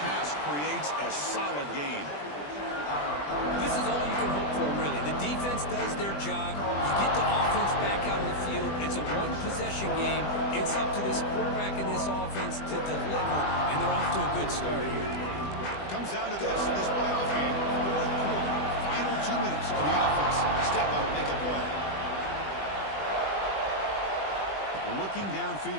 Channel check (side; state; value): right; late; 20 ms